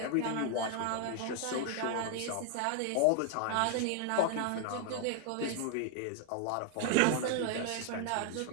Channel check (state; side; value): different; both; correlation 0.00